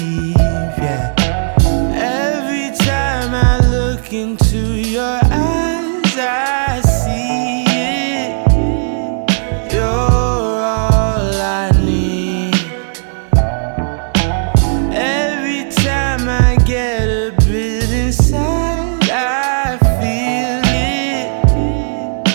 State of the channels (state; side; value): silent; left; digital silence